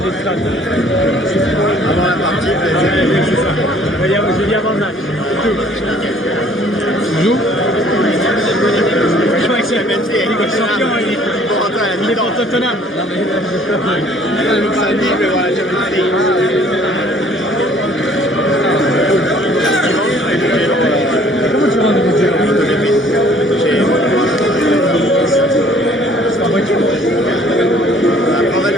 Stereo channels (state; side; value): normal; both; correlation 0.57